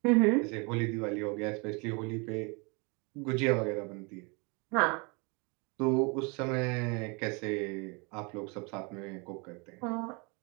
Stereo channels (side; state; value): left; quieter; 30.8 dB